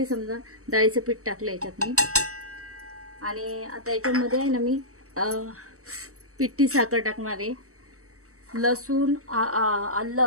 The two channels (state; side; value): late; left; 0.65 ms